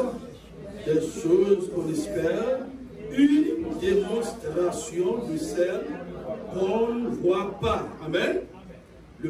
des choses qu'on espère, une démonstration de celles qu'on ne voit pas. Amen. Le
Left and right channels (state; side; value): identical; both; correlation 1.00